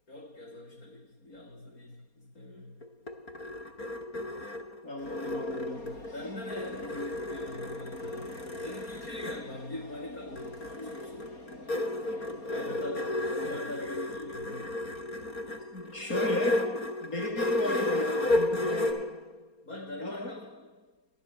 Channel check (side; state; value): right; late; 4.3 ms